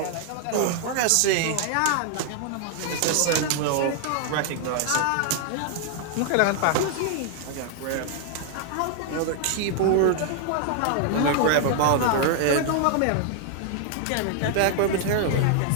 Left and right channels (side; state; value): both; different; correlation 0.00